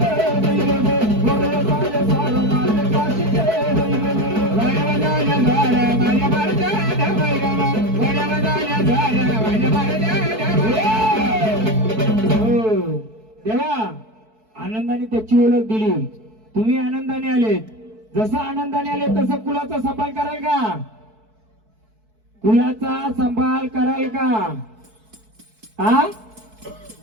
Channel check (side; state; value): left; late; 4.6 ms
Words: देवा आनंदाने त्याची ओळख दिली, तुम्ही आनंदाने आलेत. जसं आनंदाने आले तसं कुलाचा सांभाळ कराल का. कुलाचा सांभाळ कराल का. हा